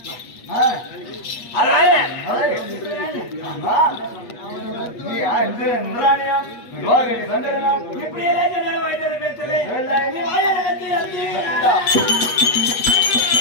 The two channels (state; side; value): late; right; 8.4 ms